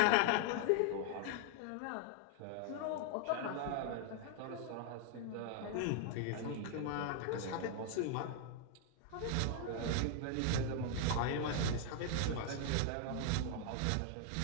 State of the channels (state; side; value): different; both; correlation 0.00